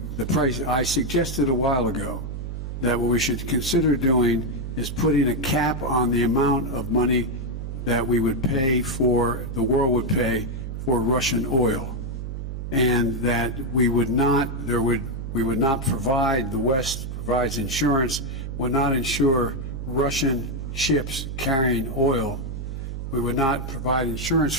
price. I suggested a while ago that what we should consider doing is putting a cap on the amount of money that we would pay for, the world would pay for Russian oil, and that we would not provide, the West provides insurance, would not insure Russian ships carrying oil. We would not provide insurance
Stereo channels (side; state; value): right; noise; hum, 6 dB below the sound